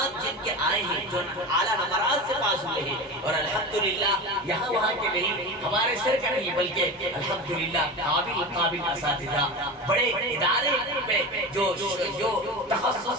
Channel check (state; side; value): normal; both; correlation 0.27